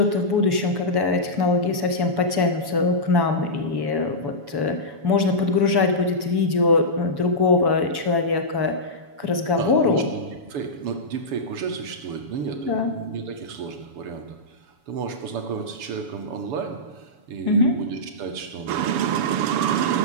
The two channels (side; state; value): left; late; 7.0 ms